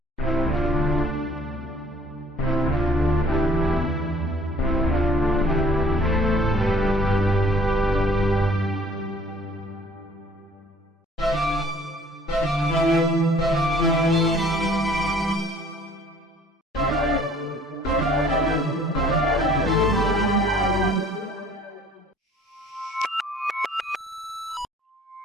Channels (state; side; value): normal; both; correlation 0.56